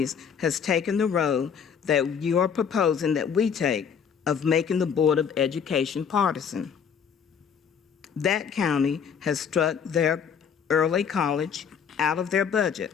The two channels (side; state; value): right; quieter; 7.2 dB